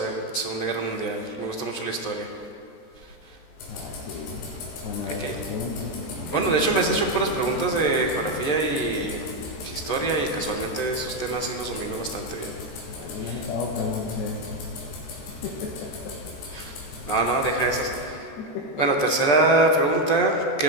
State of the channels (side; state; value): right; late; 14 ms